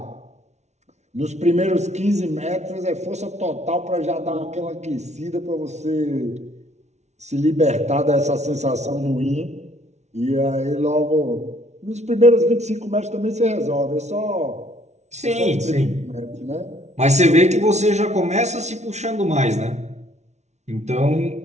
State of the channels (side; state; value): left; late; 0.32 ms